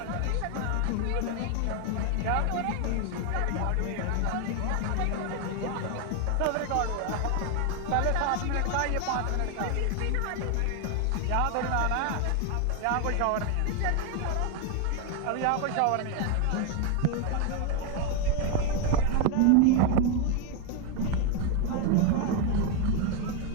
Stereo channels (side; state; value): both; different; correlation 0.01